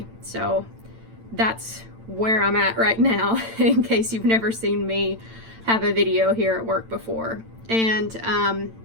So that's where I'm at right now, in case you've never seen me have a video here at work before. And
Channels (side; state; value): left; late; 8.9 ms